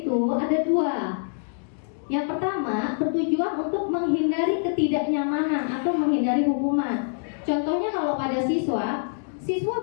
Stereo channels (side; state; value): right; silent; digital silence